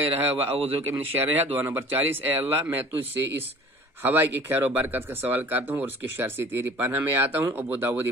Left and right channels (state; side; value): normal; both; correlation 0.46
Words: و اعوذک من شرہا. دعا نمبر 40. اے اللہ میں تجھ سے اس ہوا کی خیر و برکت کا سوال کرتا ہوں اور اس کے شر سے تیری پناہ میں آتا ہوں. ابو داود